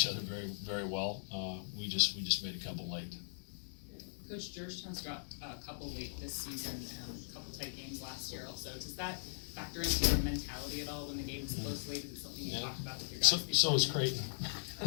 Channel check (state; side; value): silent; right; digital silence